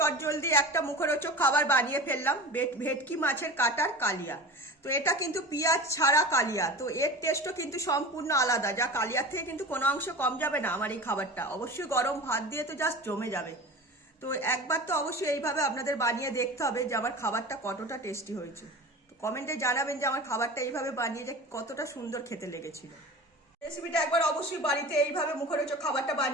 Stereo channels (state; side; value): normal; both; correlation 0.34